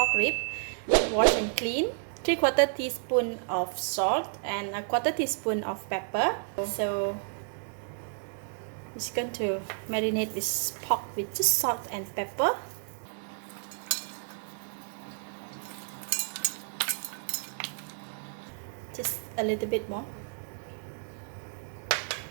rib, washed and clean, 3/4 teaspoon of salt and 1/4 teaspoon of pepper. So it's going to marinate this pork with just salt and pepper. Just a little bit more.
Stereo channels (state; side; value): silent; left; digital silence